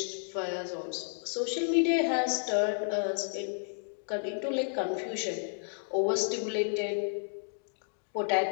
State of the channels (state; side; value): silent; right; digital silence